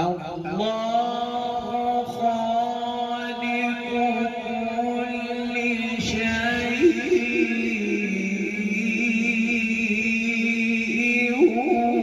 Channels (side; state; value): both; identical; correlation 1.00